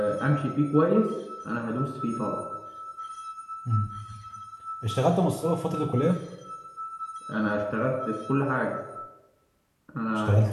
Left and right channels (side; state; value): both; identical; correlation 1.00